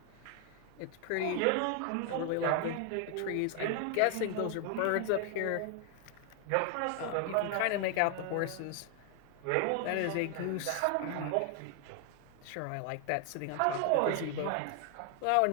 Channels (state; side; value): different; both; correlation 0.00